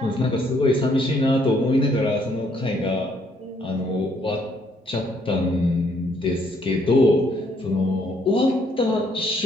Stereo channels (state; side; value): normal; both; correlation 0.68